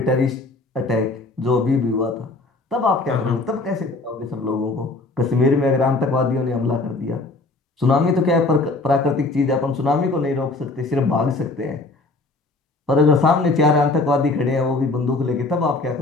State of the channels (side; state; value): right; quieter; 3.3 dB